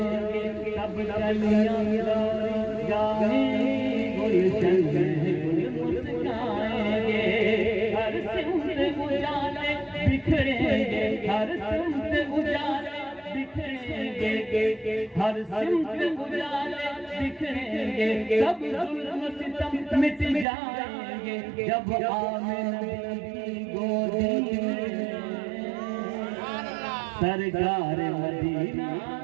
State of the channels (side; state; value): left; drops out; at 20.5 s